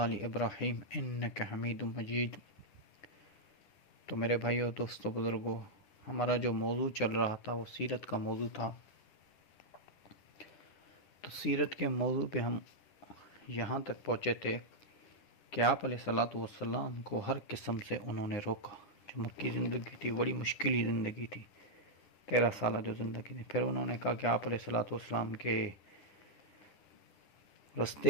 ابراہیم انک حمید مجید۔ تو میرے بھائیو، دوستو، بزرگوں، ہمارا جو موضوع چل رہا تھا وہ سیرت کا موضوع تھا۔ تو سیرت کے موضوع پہ ہم یہاں تک پہنچے تھے کہ آپ علیہ الصلاۃ والسلام کو ہر قسم سے انہوں نے روکا۔ جو مکی زندگی تھی بڑی مشکلی زندگی تھی، 13 سالہ جو زندگی تھی۔ پھر انہوں نے کہا کہ آپ علیہ الصلاۃ والسلام کے رستے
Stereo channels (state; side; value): late; right; 9.7 ms